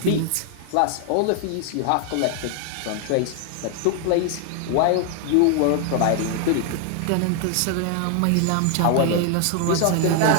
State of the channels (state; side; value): different; both; correlation 0.00